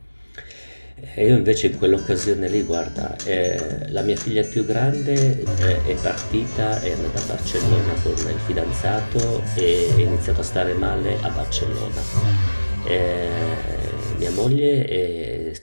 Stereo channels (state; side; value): inverted; both; correlation -1.00